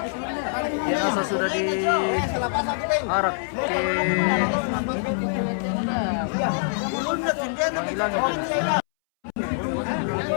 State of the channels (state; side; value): silent; right; 62 dB below the other